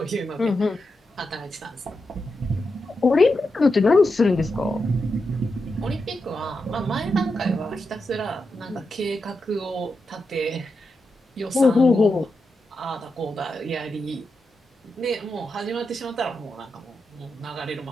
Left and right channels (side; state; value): both; normal; correlation 0.87